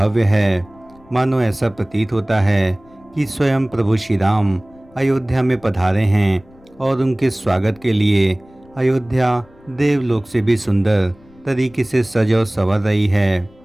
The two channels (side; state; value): left; noise; rumble, 27 dB below the sound